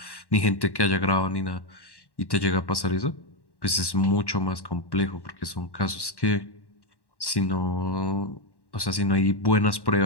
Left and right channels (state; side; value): late; right; 1.1 ms